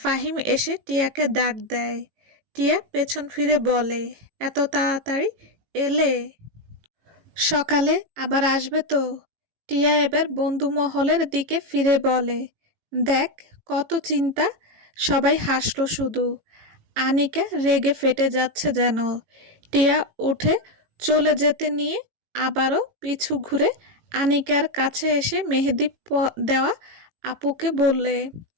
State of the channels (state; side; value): late; left; 18 ms